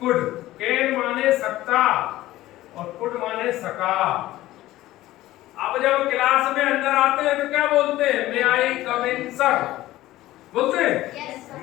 कैन माने सकता और कुड माने सका। अब जब क्लास में अंदर आते हैं तो क्या बोलते हैं, मे आई कम इन सर, बोलते हैं। yes,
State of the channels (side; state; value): right; quieter; 15.9 dB